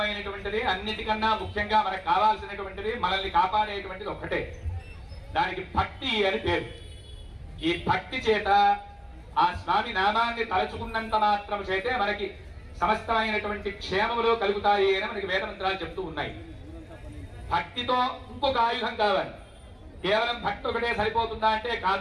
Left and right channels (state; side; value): identical; both; correlation 1.00